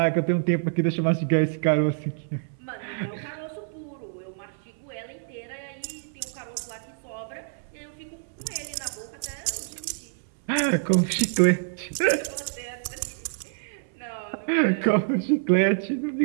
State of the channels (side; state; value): left; silent; 60 dB below the other